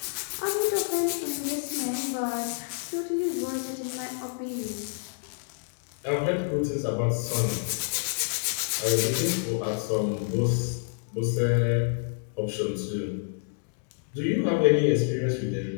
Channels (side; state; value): right; silent; digital silence